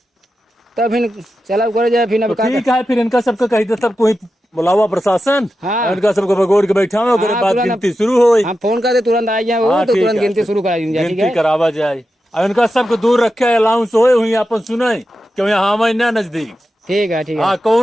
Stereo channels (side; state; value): both; normal; correlation 0.90